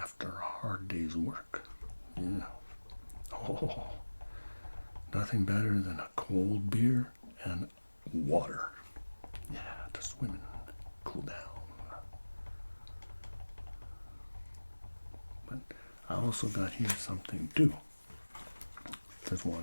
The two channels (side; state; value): both; inverted; correlation -1.00